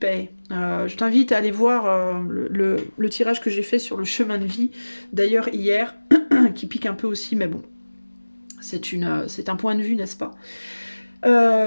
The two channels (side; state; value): both; inverted; correlation -1.00